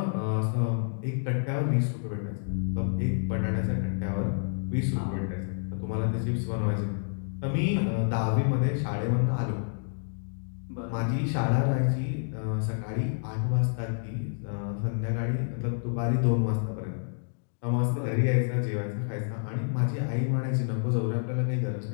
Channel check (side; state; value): right; silent; digital silence